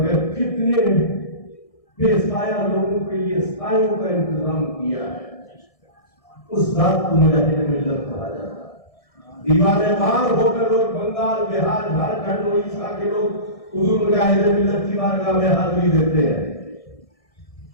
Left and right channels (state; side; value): late; right; 1.6 ms